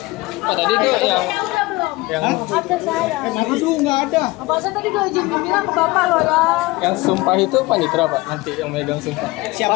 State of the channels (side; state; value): right; quieter; 21.4 dB